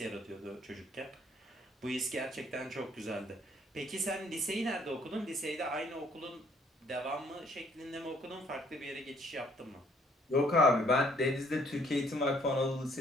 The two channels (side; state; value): both; normal; correlation 0.63